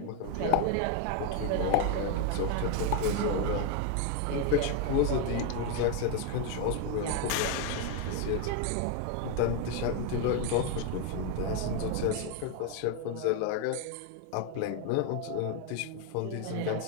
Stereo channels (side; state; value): both; different; correlation 0.01